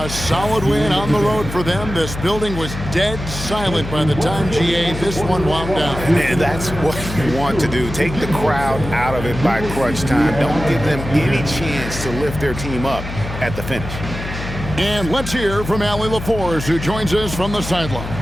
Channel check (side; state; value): left; noise; hum, 8 dB below the sound